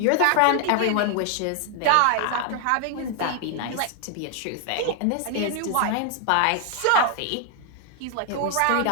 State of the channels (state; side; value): different; both; correlation 0.00